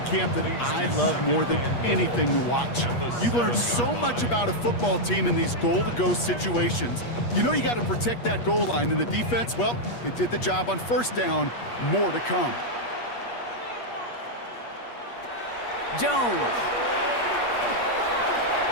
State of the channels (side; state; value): right; late; 8.4 ms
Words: camp that I love more than anything to watch. You learn so much about a football team in these goal-to-go situations. You know you got to protect that goal line, and the defense, well, they did the job on 1st down. More to come. Jones.